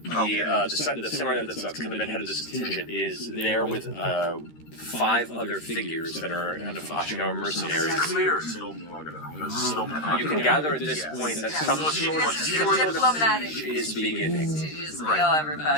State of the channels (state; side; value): late; right; 13 ms